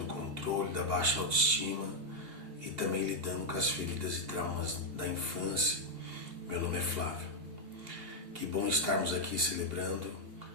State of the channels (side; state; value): left; late; 2.8 ms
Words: controle, da baixa autoestima e também lidando com as feridas e traumas da infância. Meu nome é Flávio. Que bom estarmos aqui celebrando